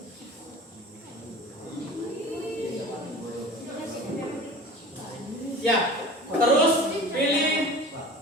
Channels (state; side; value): normal; both; correlation 0.38